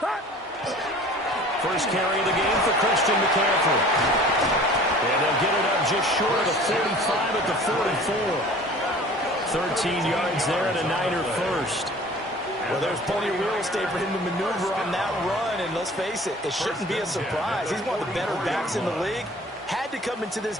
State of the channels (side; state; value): both; normal; correlation 0.46